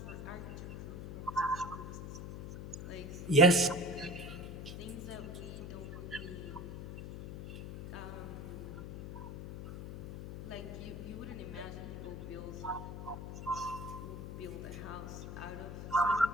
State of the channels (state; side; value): noise; left; hum, 8 dB below the sound